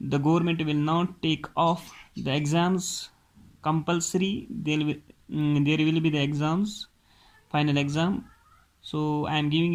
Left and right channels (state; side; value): identical; both; correlation 1.00